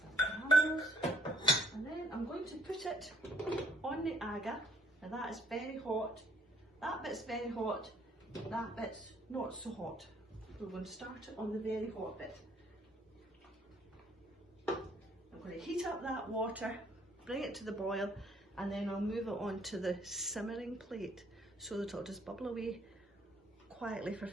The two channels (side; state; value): both; normal; correlation 0.64